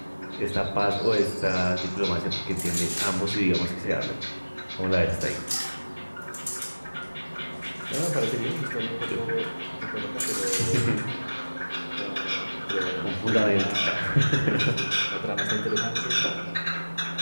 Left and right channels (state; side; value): inverted; both; correlation -1.00